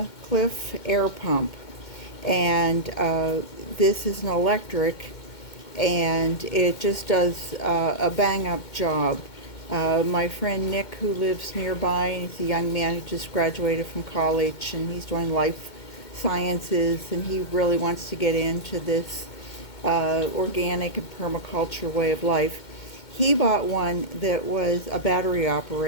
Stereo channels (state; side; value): late; right; 2.2 ms